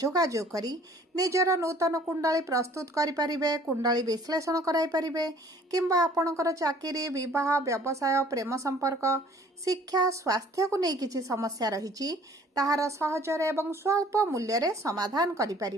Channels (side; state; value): both; normal; correlation 0.54